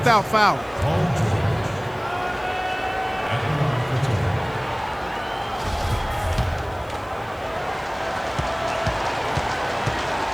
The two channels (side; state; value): right; noise; hiss, 28 dB below the sound